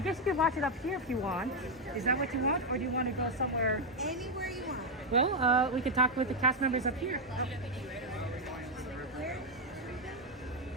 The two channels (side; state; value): both; normal; correlation 0.02